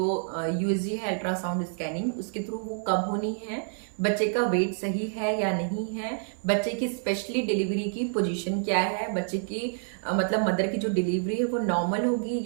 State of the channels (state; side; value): silent; left; 57 dB below the other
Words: USG है अल्ट्रासाउंड स्कैनिंग, उसके थ्रू वो कब होनी है, बच्चे का वेट सही है या नहीं है, बच्चे की स्पेशली डिलीवरी की पोजीशन क्या है, बच्चे की मतलब मदर की जो डिलीवरी है वो नॉर्मल होगी